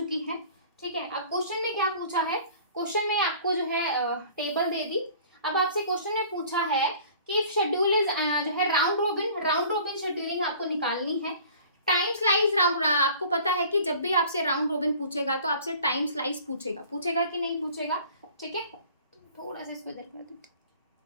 है, ठीक है। अब क्वेश्चन में क्या पूछा है, क्वेश्चन में आपको जो है टेबल दे दी। अब आपसे क्वेश्चन में पूछा है कि शेड्यूल इज जो है राउंड रोबिन शेड्यूलिंग आपको निकालनी है। टाइम स्लाइस राउंड, आपको पता है कि जब भी आपसे राउंड रोबिन पूछेगा तो आपसे टाइम स्लाइस पूछेगा कि नहीं पूछेगा, ठीक है। थोड़ा सा इसको इधर कर दो,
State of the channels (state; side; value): inverted; both; correlation -0.48